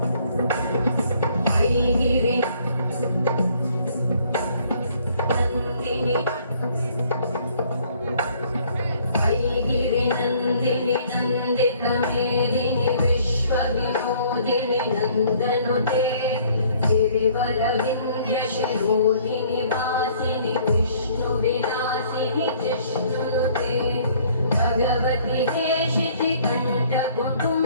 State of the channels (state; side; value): inverted; both; correlation -0.60